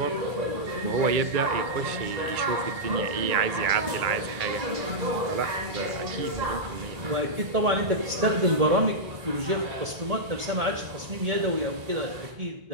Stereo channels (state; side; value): late; left; 1.8 ms